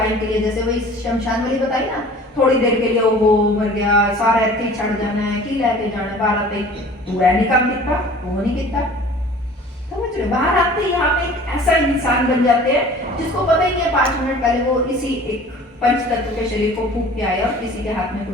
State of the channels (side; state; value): both; normal; correlation 0.46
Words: के लिए, जैसे वही शमशान वाली बताई ना, थोड़ी देर के लिए वो मर गया, सारा ऐसे छड़ जाना है, की लेके जाना है, बाहर आते पूरा नहीं काम कितना, वो नहीं कितना, समझ रहे? बाहर आते ही यहाँ पे एक ऐसा इंसान बन जाते हैं जिसको पता ही नहीं है 5 मिनट पहले वो इसी एक पंच तत्व के शरीर को फूंक के आया और किसी के हाथ में